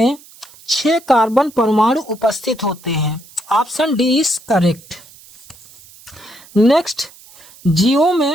6 कार्बन परमाणु उपस्थित होते हैं। Option D is correct. Next, जीवों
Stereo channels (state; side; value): noise; right; hiss, 23 dB below the sound